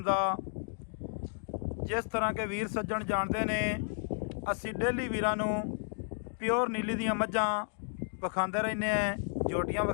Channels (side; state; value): right; silent; digital silence